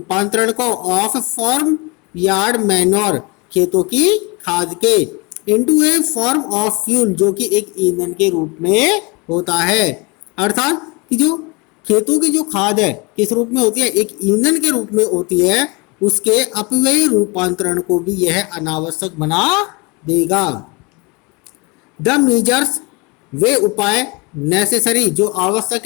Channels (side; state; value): right; quieter; 28.0 dB